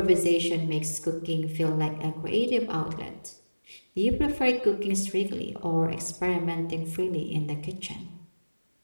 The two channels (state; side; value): inverted; both; correlation -1.00